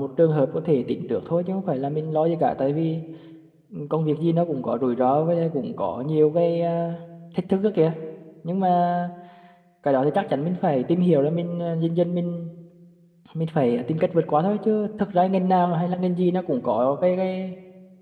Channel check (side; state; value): both; identical; correlation 1.00